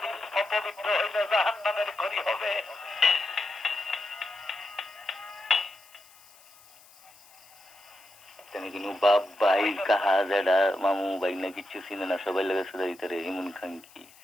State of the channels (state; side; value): noise; left; hiss, 25 dB below the sound